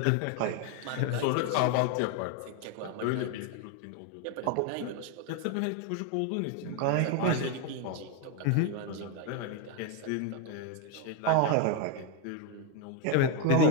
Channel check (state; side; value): different; both; correlation 0.01